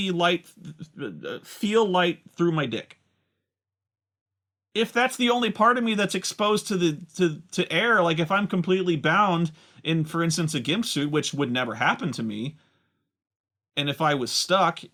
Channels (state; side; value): identical; both; correlation 1.00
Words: light, feel light through my dick. If that's the only part of me that's exposed to air, like if I'm completely bound in, for instance, a gimp suit, which would never happen to me, and if I was stuck